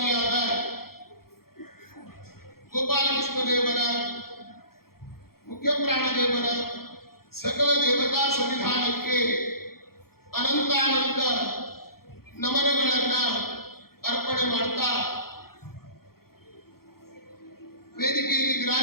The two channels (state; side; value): late; right; 0.94 ms